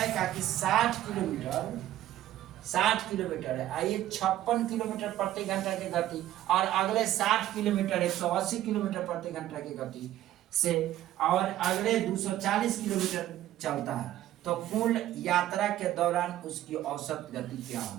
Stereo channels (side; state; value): left; quieter; 13.6 dB